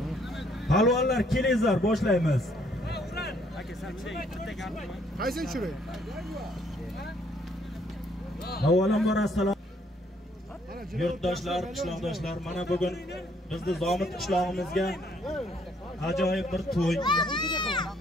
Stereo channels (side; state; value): both; normal; correlation 0.66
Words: Palvonlar kelingizlar, boshlaymiz. Aka, sen bitta gapmi? Qaysi tushiray? Avvalambor assalom. Yurtdoshlar, qishloqdoshlar, mana bugun bizni Zomit qishlog'imizga ajoyib bir to'y.